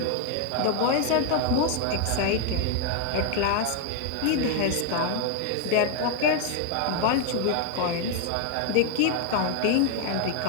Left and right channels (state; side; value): different; both; correlation 0.00